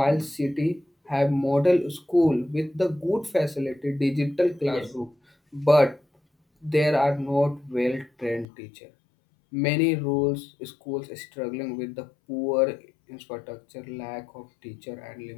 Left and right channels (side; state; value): right; drops out; at 8.5 s